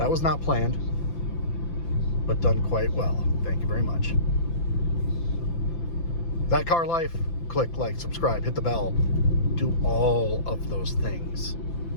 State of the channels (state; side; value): late; right; 5.9 ms